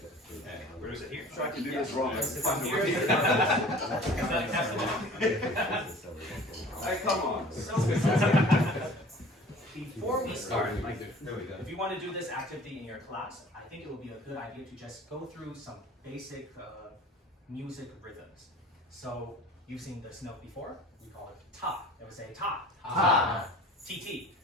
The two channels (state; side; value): normal; both; correlation 0.46